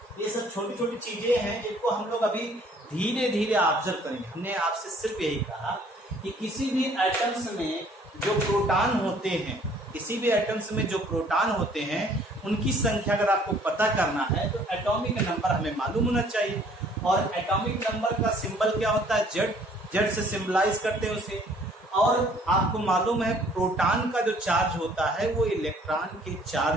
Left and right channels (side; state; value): both; normal; correlation 0.58